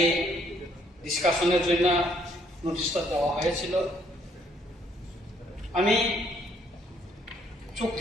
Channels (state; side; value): normal; both; correlation 0.67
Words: ডিসকাশনের জন্য নোটিশটা দেওয়া হয়েছিল। আমি